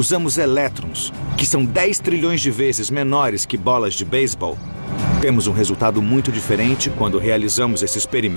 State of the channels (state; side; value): inverted; both; correlation -1.00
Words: elétrons, que são 10 trilhões de vezes menores que bolas de beisebol, temos um resultado muito diferente quando realizamos esse